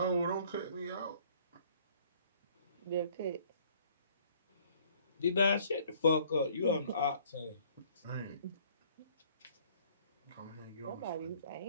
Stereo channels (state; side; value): inverted; both; correlation -0.59